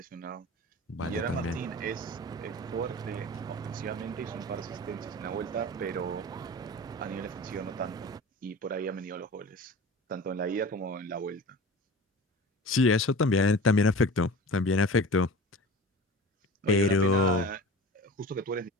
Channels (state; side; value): normal; both; correlation 0.36